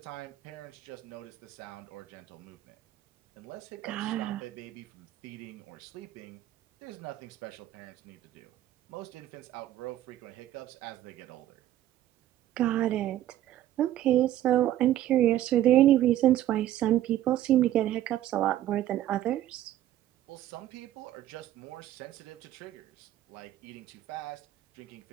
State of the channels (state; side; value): quieter; left; 13.1 dB